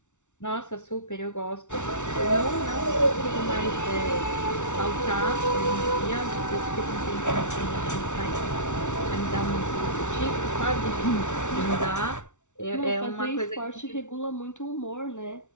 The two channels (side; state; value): right; late; 0.85 ms